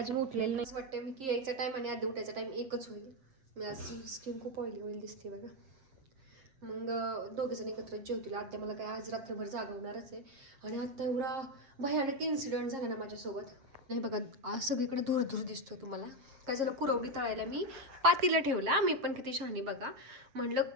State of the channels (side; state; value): left; late; 7.5 ms